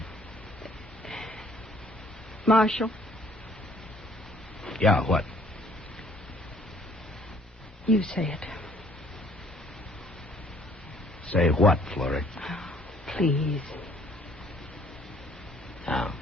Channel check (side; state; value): both; normal; correlation 0.60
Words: Marshal? Yeah, what? You say it. Say what, Florrie? Please. Now.